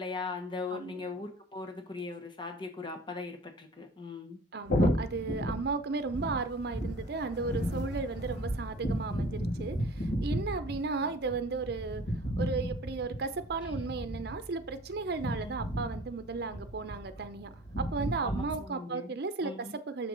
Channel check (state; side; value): normal; both; correlation 0.44